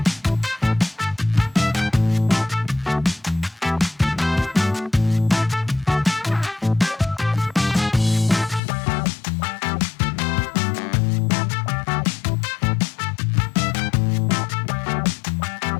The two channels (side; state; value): right; drops out; at 8.6 s